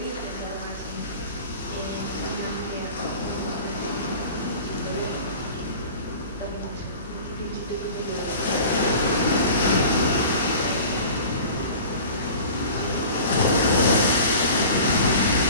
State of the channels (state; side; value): inverted; both; correlation -0.40